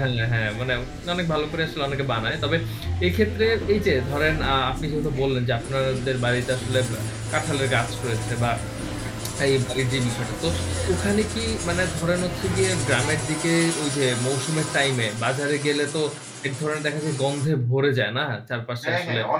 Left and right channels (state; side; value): identical; both; correlation 1.00